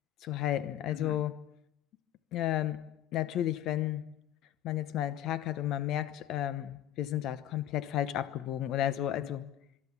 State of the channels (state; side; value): quieter; right; 11.8 dB